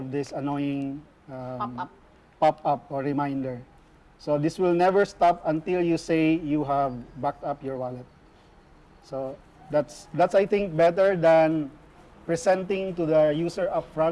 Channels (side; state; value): both; identical; correlation 1.00